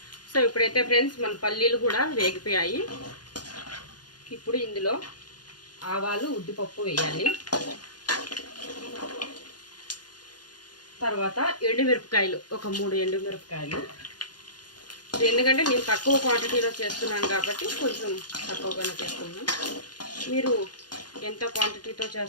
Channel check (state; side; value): late; right; 0.70 ms